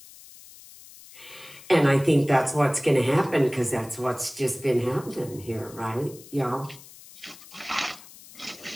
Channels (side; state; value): left; noise; hiss, 20 dB below the sound